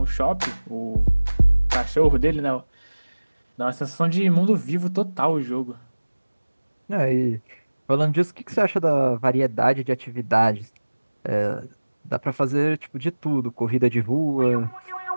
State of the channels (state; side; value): inverted; both; correlation -1.00